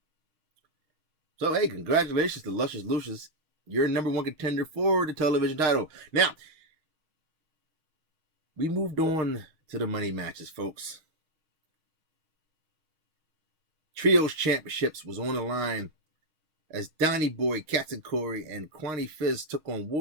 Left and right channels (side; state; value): left; late; 6.4 ms